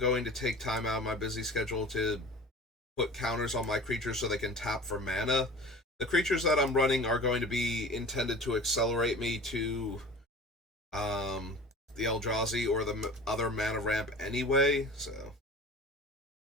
to take time out of my busy schedule to put counters on my creatures so they can tap for mana. The creatures that I'm running are going to be intended to accelerate me to the Eldrazi or the other mana ramp anyway, so...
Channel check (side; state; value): both; normal; correlation 0.39